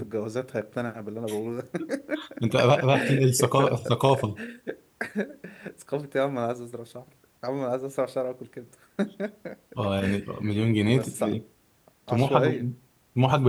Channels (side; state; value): both; identical; correlation 1.00